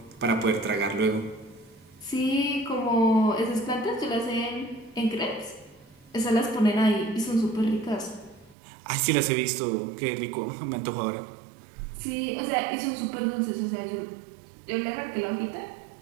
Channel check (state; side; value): drops out; left; at 8.6 s